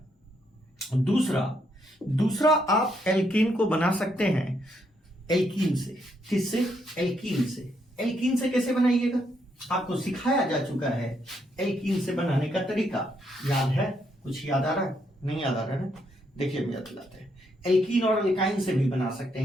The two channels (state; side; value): normal; both; correlation 0.75